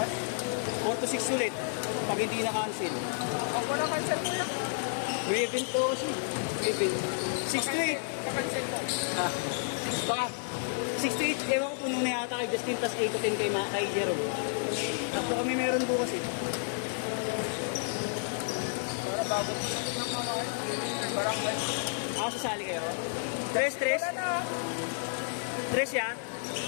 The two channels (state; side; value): silent; right; digital silence